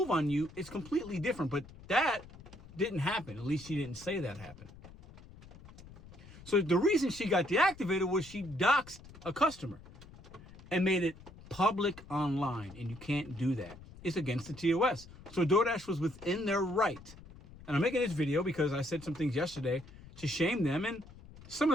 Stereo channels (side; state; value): left; noise; rumble, 19 dB below the sound